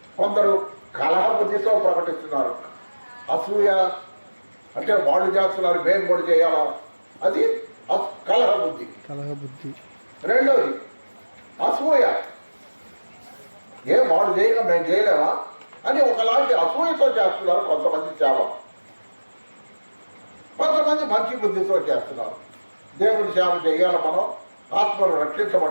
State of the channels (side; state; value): both; inverted; correlation -1.00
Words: కొందరు కలహబుద్ధితో ప్రకటిస్తున్నారు. అసూయ అంటే వాళ్ళు చేస్తున్నారు, మేము కూడా చేయాలా, అది కలహబుద్ధి. రెండోది అసూయ, ఏం వాళ్ళు చేయక మేము చేయలేమా అని ఒకలాంటి అసూయతో చేస్తున్నారు కొంతమంది సేవ. కొంతమంది మంచి బుద్ధితో చేస్తున్నారు. దేవుడి సేవ చేయాలి, మనం ఆత్మలు